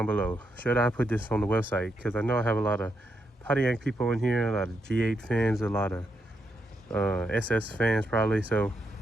below. Should I put this on the website? Because I know I have a lot of Pontiac people in here, a lot of G8 fans, a lot of SS fans probably. So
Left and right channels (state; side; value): normal; both; correlation 0.81